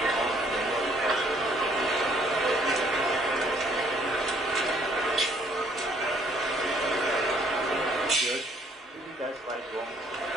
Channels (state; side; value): normal; both; correlation 0.63